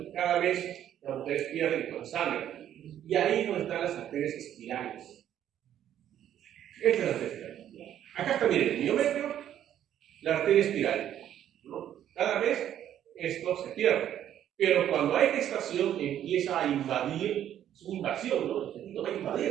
cada vez las mujeres pierden con sangre. Y ahí es donde están las arterias espirales. Esta es la arteria espiral. Acá está, miren, el miometrio, la arteria espiral, ¿no? Cada vez esto se pierde. Pero cuando hay gestación empieza a invadir, es una invasión, ¿no? El feto va a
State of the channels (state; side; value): quieter; left; 10.8 dB